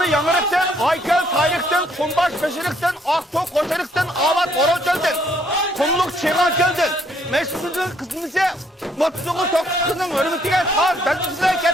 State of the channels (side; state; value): both; normal; correlation 0.67